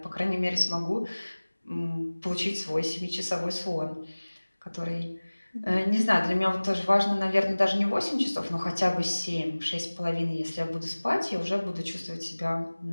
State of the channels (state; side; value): inverted; both; correlation -1.00